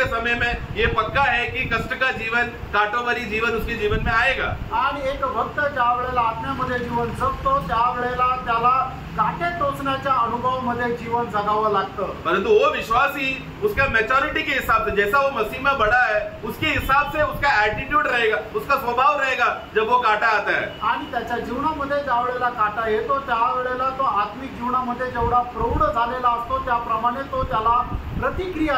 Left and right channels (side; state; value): both; identical; correlation 1.00